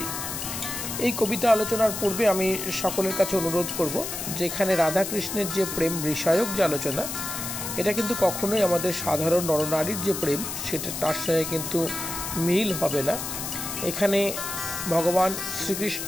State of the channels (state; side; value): noise; left; hiss, 5 dB below the sound